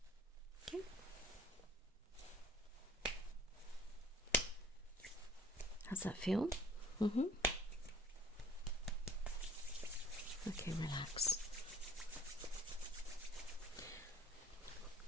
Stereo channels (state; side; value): normal; both; correlation 0.52